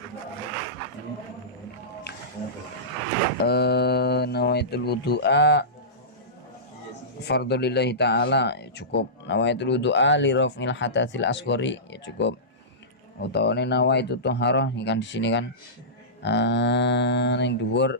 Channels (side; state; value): both; normal; correlation -0.19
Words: Nawaitul wudu'a fardhulillahi ta'ala, ya cukup. Nawaitul wudu'a li raf'il hadatsil asghari, ya cukup. Utawane nawaitu thaharah, ini kan di sini kan yang